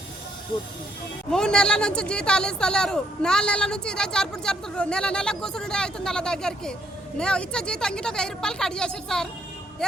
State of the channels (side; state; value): both; normal; correlation 0.71